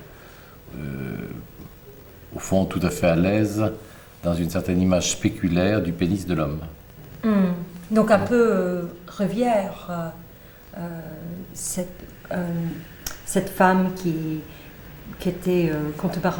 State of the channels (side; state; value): both; identical; correlation 1.00